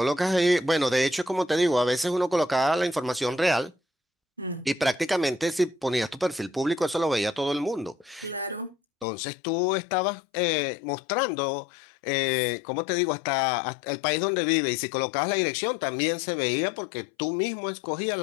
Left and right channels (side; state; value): right; drops out; at 9.1 s